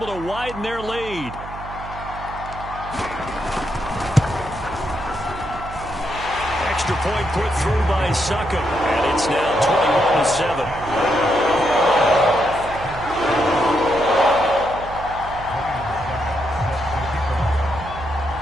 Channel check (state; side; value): noise; right; hum, 13 dB below the sound